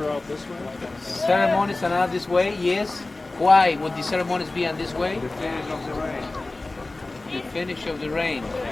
out this way? Ceremonies are not this way, yes. Why would the ceremonies be on this way? The finish of the rain. The finish of the rain.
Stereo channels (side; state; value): right; quieter; 3.1 dB